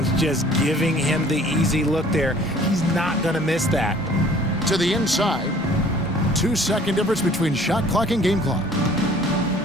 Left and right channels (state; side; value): normal; both; correlation 0.53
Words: just giving him the easy look there. He's not going to miss that. To the inside. 2-second difference between shot clock and game clock.